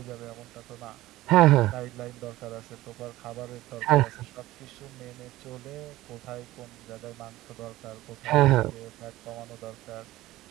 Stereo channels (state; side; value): quieter; left; 16.7 dB